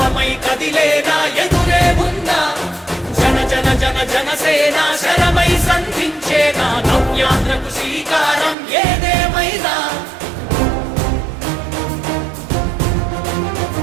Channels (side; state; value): left; drops out; at 8.6 s